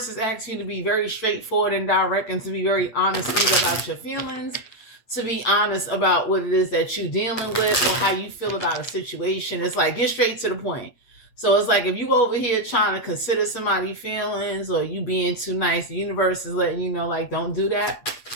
is asking you to be very straightforward and direct and to be very honest about your feelings, to be honest about what it is that you're dealing with or how you feel about a situation. It's like, get straight to the point. So it's like if you over here trying to consider somebody's feelings or you being too nice, the universe is letting you know, like, don't do that.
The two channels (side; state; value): right; late; 8.5 ms